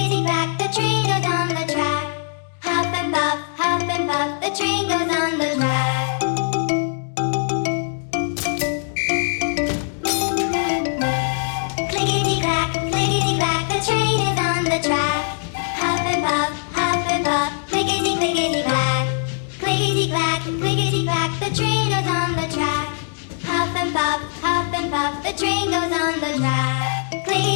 train goes on the track. Huff and puff, the train goes on the track. Clickety clack, the train goes on the track. Huff and puff, clickety clickety clack. Clickety clack, the train goes on the track. Huff and puff, the train goes on the track.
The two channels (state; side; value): silent; right; 65 dB below the other